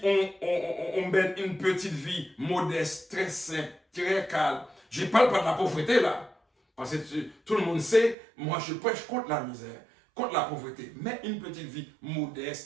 on mène une petite vie modeste, très simple, très calme. Je ne parle pas de la pauvreté là. Parce que tout le monde sait, moi je prêche contre la misère, contre la pauvreté. Mais une petite vie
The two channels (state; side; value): drops out; left; at 8.2 s